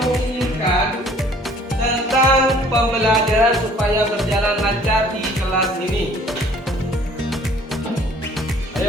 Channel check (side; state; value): both; normal; correlation 0.55